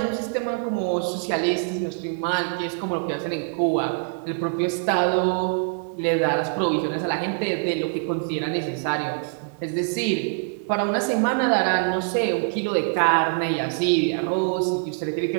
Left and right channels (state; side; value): silent; left; digital silence